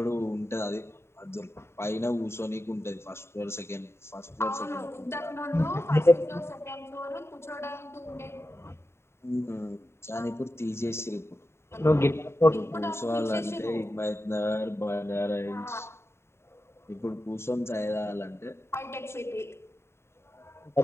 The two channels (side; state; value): right; late; 0.12 ms